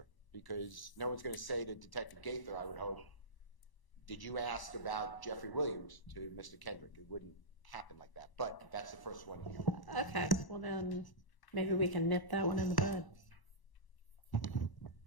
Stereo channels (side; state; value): right; late; 1.0 ms